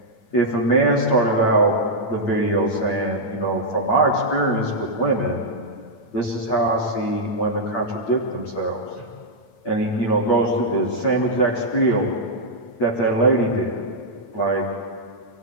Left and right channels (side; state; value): right; late; 9.1 ms